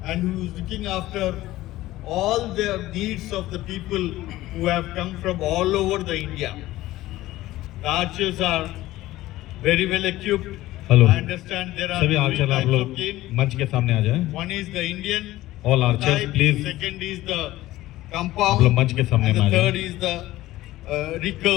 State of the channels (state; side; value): quieter; right; 16.4 dB